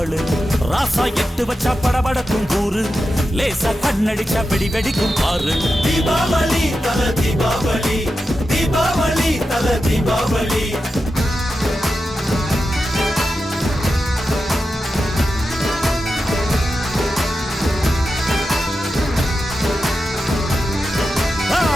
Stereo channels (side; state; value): both; normal; correlation 0.90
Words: ராசா எட்டு வச்சா படபடக்கும் கூறு, லேசா கண்ணடிச்சா வெடி வெடிக்கும் பாரு. தீபாவளி தல தீபாவளி, தீபாவளி தல தீபாவளி.